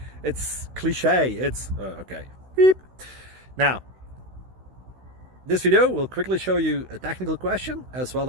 It's cliche. It's okay. Beep. Now, this video will quickly show you a technical question as well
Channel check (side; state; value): left; late; 16 ms